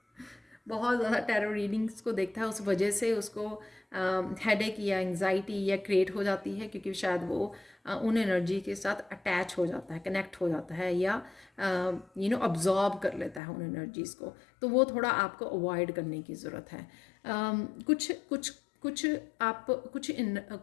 बहुत ज़्यादा टैरो रीडिंग्स को देखता है, उस वजह से उसको हेडेक या एंग्जाइटी या क्रिएट हो जाती है, क्योंकि शायद वो उन एनर्जी के साथ अटैच हो जाता है, कनेक्ट हो जाता है, या अब्जॉर्ब कर लेता है उन एनर्जीज़ को। तो वो थोड़ा आपको अवॉइड करने की ज़रूरत है। कुछ कुछ कुछ आप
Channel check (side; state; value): right; drops out; at 13.4 s